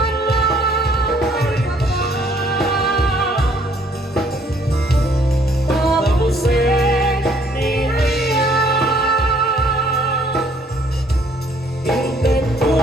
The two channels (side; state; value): both; normal; correlation 0.62